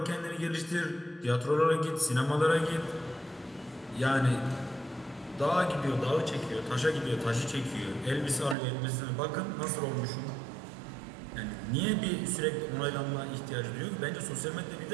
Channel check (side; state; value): left; drops out; at 8.6 s